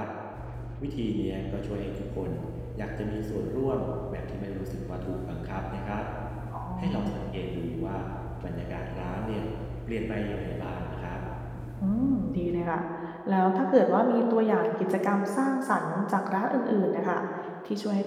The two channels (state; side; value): identical; both; correlation 1.00